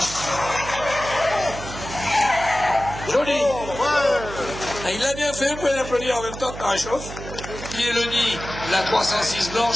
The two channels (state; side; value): noise; right; hum, 11 dB below the sound